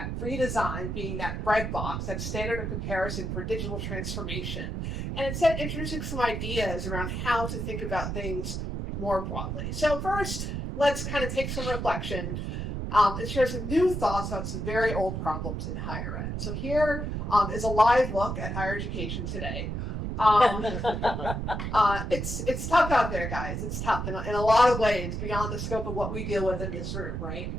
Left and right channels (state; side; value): noise; right; rumble, 3 dB below the sound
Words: redesign being that breadbox, that standard of comparison for digital transformation, and instead introducing some ideas around how to think about things more broadly. So first, let's kind of take some reflection and share some new thoughts about some very old problems in higher ed. So here is a live look at higher education today. It's tough out there, guys. It's tough in a lot of ways, beyond the scope of what we deal with in this room, right?